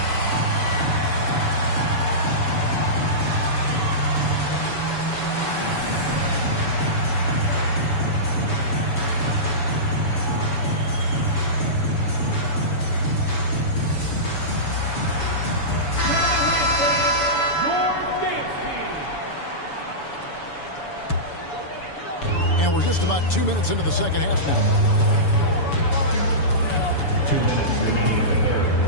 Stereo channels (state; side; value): late; right; 7.0 ms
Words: And we're just about 2 minutes into the second half now. 2 minutes remaining in the